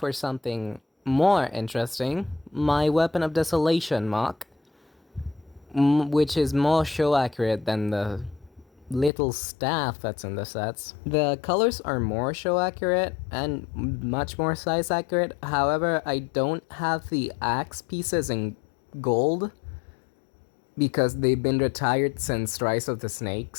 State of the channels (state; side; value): drops out; right; at 9.1 s